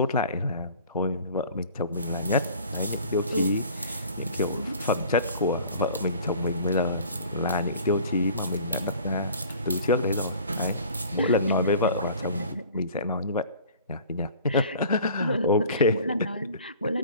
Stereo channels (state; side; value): inverted; both; correlation -0.47